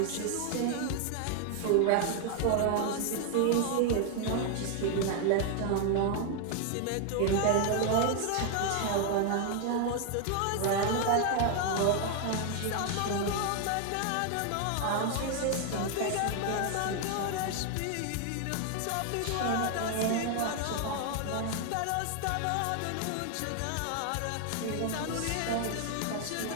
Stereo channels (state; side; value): different; both; correlation 0.00